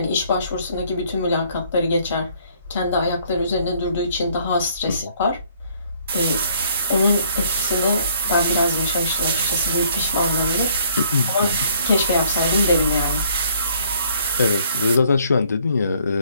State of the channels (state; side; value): inverted; both; correlation -0.63